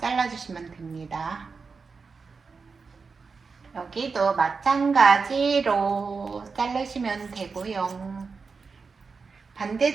됩니다. 여기도 마찬가지로 자르시면 되고요.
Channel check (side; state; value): left; quieter; 4.9 dB